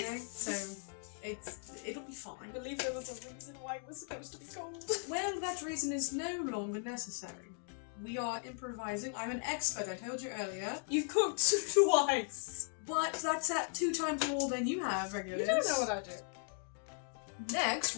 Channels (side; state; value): right; silent; 53 dB below the other